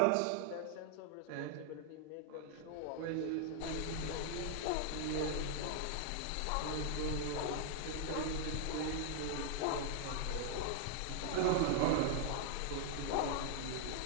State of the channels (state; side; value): different; both; correlation 0.00